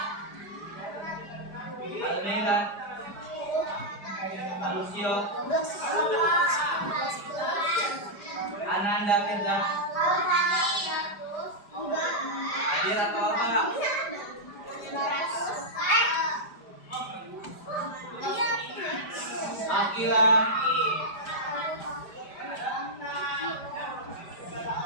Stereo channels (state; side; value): late; right; 5.0 ms